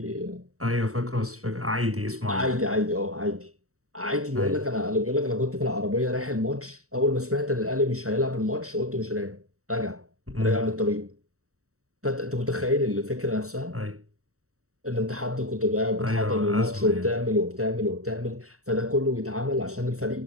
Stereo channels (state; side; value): late; left; 0.64 ms